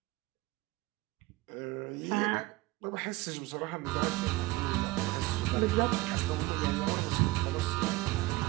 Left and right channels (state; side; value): quieter; left; 20.0 dB